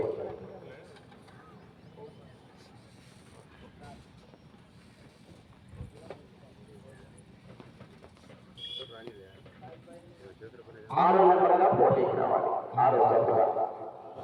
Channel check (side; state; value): both; identical; correlation 1.00